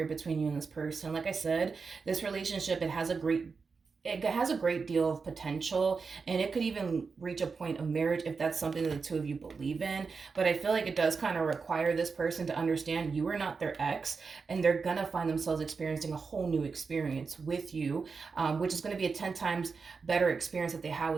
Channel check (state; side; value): quieter; left; 4.9 dB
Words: between you and this person. Like I said, this relationship, it has a great deal of potential, and it could even reach a point of marriage if that's something that the two of you believe in. But I feel like it does kind of require this person to understand you are not their ex, and they're gonna find themselves experiencing a whole new experience with you, which is going to be a 10 times better experience that they had